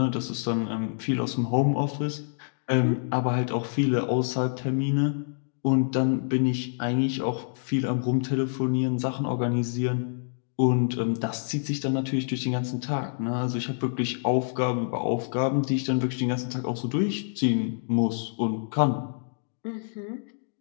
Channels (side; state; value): right; silent; digital silence